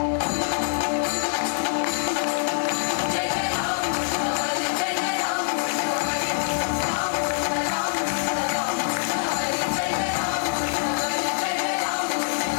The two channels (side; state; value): right; silent; digital silence